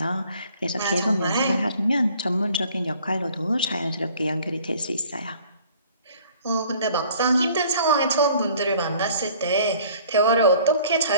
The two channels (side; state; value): both; inverted; correlation -0.54